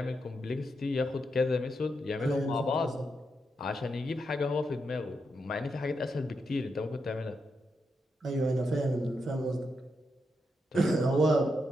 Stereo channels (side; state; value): both; normal; correlation 0.83